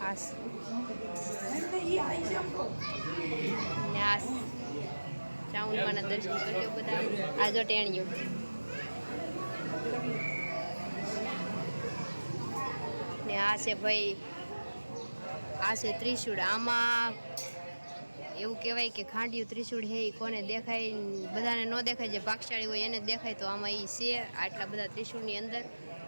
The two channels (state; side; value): inverted; both; correlation -1.00